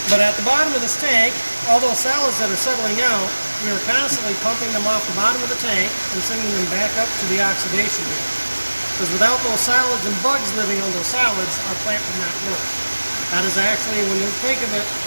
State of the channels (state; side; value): inverted; both; correlation -1.00